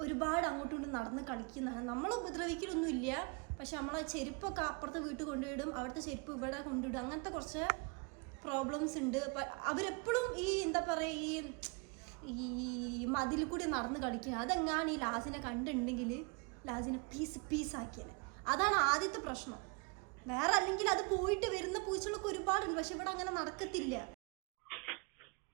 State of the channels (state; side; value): quieter; left; 32.2 dB